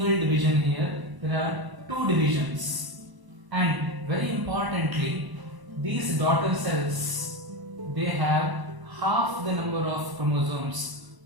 division here. There are two divisions. And very importantly, these daughter cells, they have half the number of chromosomes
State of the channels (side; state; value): left; late; 1.0 ms